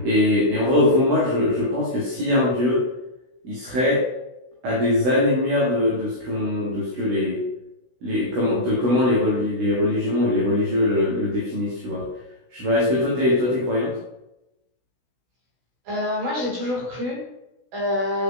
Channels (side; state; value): left; late; 16 ms